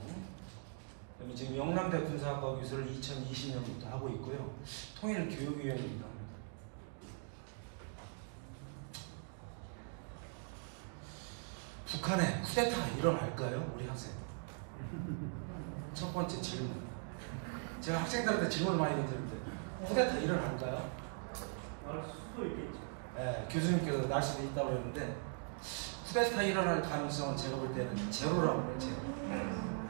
그다음에 지금 영남대 군사학과 교수를 2020년부터 하고 있고요. 통일교육위원이기도 합니다. 북한에 쿠데타가 일어날까요? 우리 학생. 첫 번째 질문. 제가 학생들한테 질문을 많이 던지는데 쿠데타 일어날까요? 날 수도 있겠죠. 네, 교수님께서 날 수도 있다고 그랬는데 쿠데타 일어날 가능성은 제가 볼 때는 제로라고 해요. 제로.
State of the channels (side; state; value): left; silent; 51 dB below the other